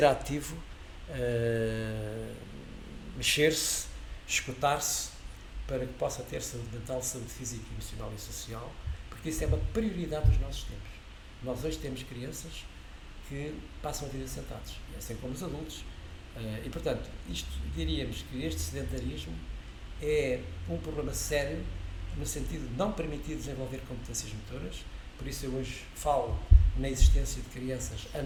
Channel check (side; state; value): both; identical; correlation 1.00